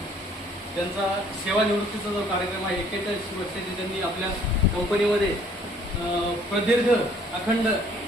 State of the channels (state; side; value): normal; both; correlation 0.59